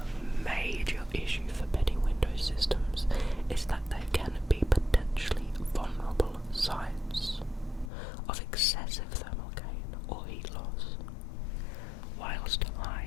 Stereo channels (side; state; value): right; drops out; at 7.9 s